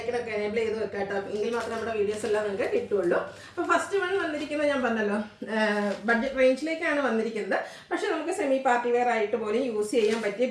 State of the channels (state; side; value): identical; both; correlation 1.00